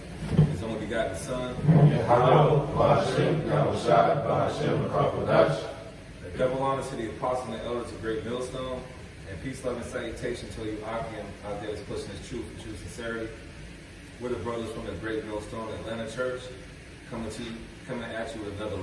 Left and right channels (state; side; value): identical; both; correlation 1.00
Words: His only begotten Son. Double honor to the apostle and the elders of Great Millstone, and peace, love, and salutation to you, Akim, out there that's pushing His truth and true sincerity. We're the brothers from the Great Millstone Atlanta Church, coming at you with another